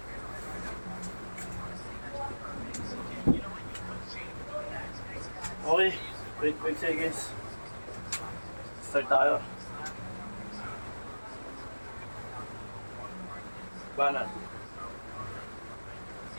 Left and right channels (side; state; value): both; inverted; correlation -1.00